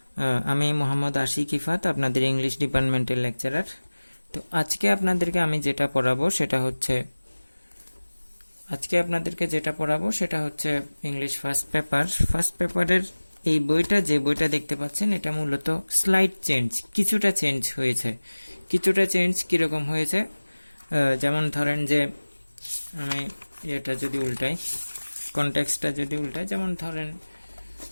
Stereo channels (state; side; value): inverted; both; correlation -1.00